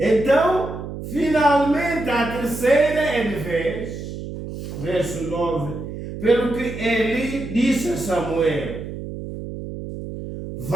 finalmente, a terceira é de vez, verso 9, pelo que Eli disse a Samuel:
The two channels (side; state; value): right; noise; hum, 9 dB below the sound